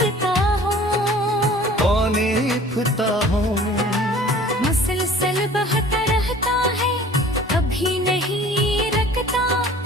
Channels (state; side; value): normal; both; correlation 0.48